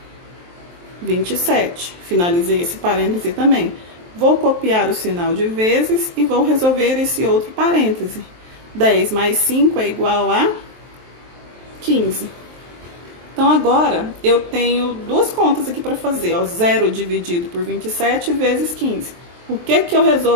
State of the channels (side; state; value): left; late; 23 ms